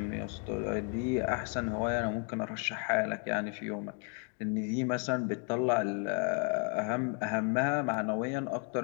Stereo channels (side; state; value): right; quieter; 39.3 dB